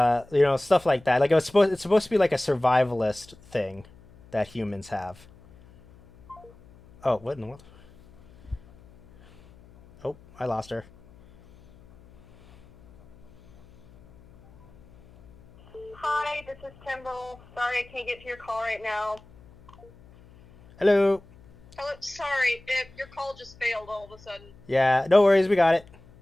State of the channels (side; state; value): left; noise; hum, 25 dB below the sound